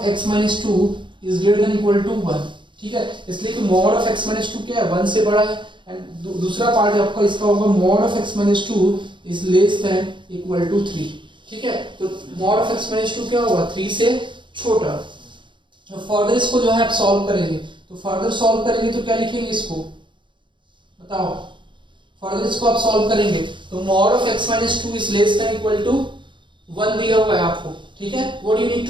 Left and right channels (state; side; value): late; left; 0.23 ms